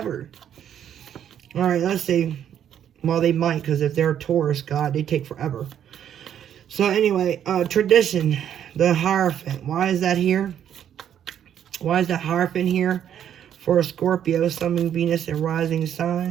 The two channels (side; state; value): left; quieter; 9.7 dB